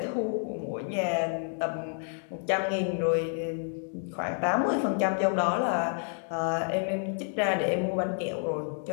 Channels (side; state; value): right; silent; 56 dB below the other